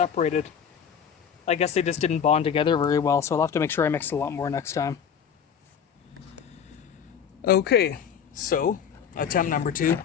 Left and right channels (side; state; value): right; quieter; 7.7 dB